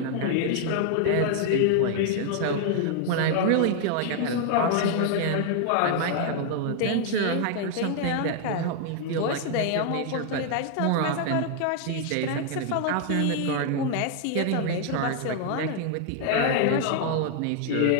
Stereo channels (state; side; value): different; both; correlation 0.00